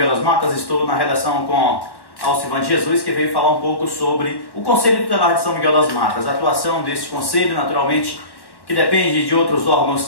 das Matas, estou na redação com Alcivan Jesus, que veio falar um pouco sobre o Conselho Tutelar de São Miguel das Matas, a atuação desse conselho, naturalmente, que depende de outros órgãos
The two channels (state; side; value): late; right; 1.1 ms